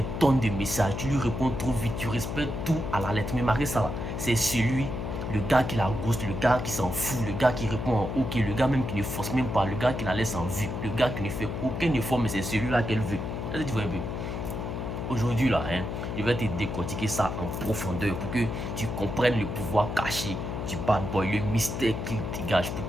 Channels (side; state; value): left; noise; hum, 4 dB below the sound